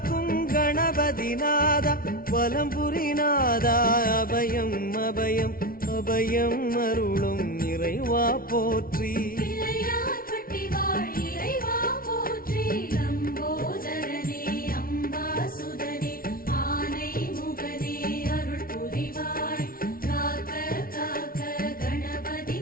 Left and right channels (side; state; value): right; late; 0.43 ms